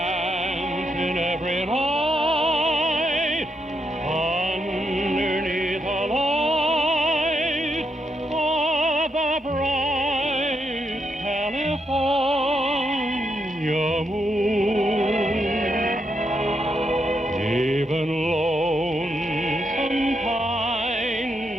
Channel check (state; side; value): normal; both; correlation 0.80